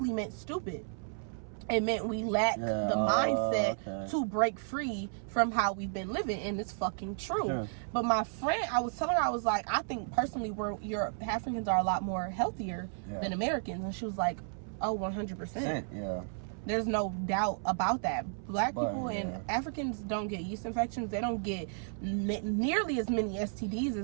meant stupid. It meant we lack the mindset to break free from how we've been living, and it's fucking true. But my friend, I was telling her, I was like, I think personally Africans are a lot more healthier than Americans, and she was like, oh, 100%. Yeah. There's no doubt about that. Black people and Africans don't get yeast infections. They don't get nearly as many STDs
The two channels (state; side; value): silent; left; 56 dB below the other